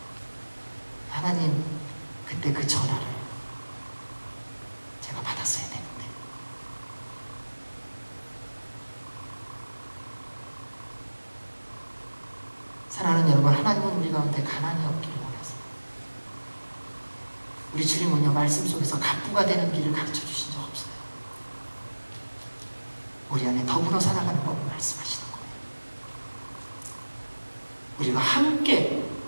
하나님, 그때 그 전화를 제가 받았어야 되는데. 사랑하는 여러분, 하나님은 우리 가운데 가난이 없기를 원하세요. 우리 주님은요, 말씀 속에서 갑부가 되는 길을 가르쳐 주신 적 없어요. 우리 안에 더불어 살아가는 법을 말씀하시는 거예요. 우리가 함께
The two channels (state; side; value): inverted; both; correlation -1.00